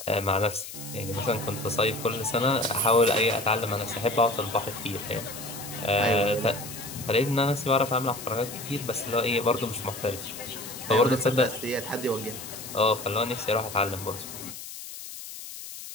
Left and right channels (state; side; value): noise; left; hiss, 11 dB below the sound